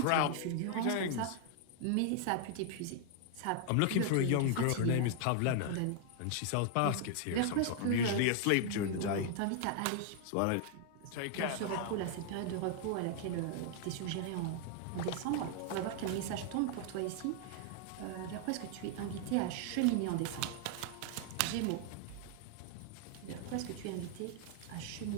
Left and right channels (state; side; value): different; both; correlation 0.00